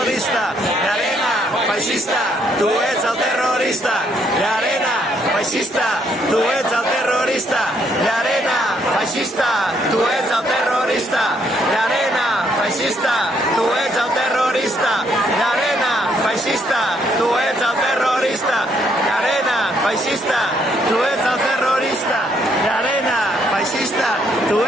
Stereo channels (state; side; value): normal; both; correlation 0.71